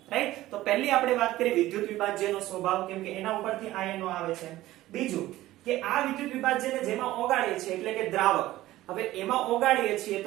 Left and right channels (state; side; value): quieter; left; 16.0 dB